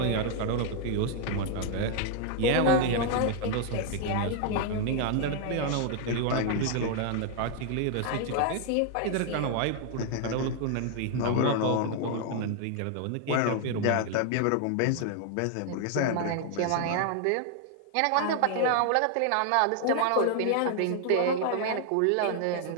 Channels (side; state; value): both; different; correlation 0.00